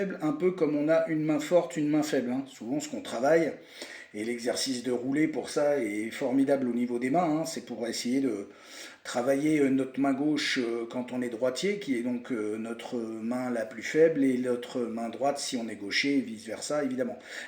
un peu comme on a une main forte, une main faible, hein. Souvent ce qu'on travaille, et l'exercice de rouler pour ça est formidable au niveau des mains, hein. C'est pour essayer de travailler notre main gauche quand on est droitier, qui est donc notre main la plus faible, et notre main droite si on est gaucher, et vice versa évidemment.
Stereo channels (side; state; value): both; identical; correlation 1.00